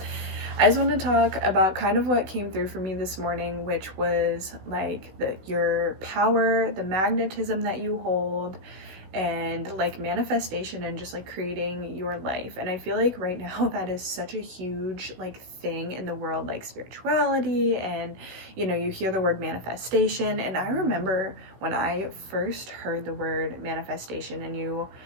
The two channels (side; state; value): left; late; 16 ms